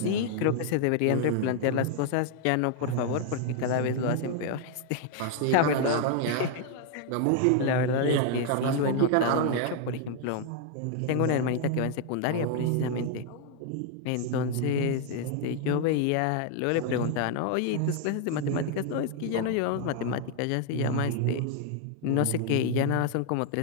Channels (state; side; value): different; both; correlation 0.00